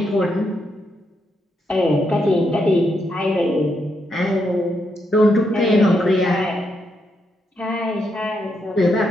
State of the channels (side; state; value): both; normal; correlation 0.80